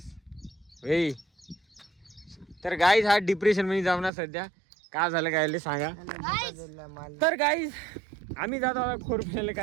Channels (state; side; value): drops out; left; at 4.1 s